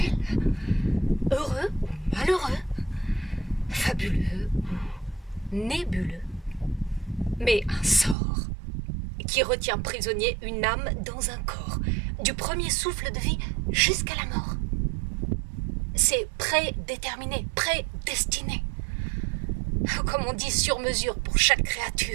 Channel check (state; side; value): drops out; left; at 8.2 s